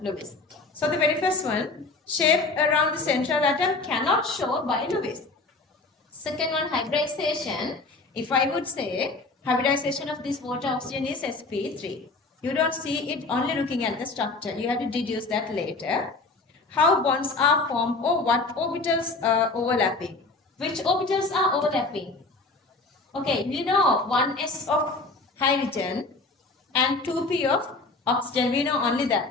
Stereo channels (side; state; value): right; quieter; 3.5 dB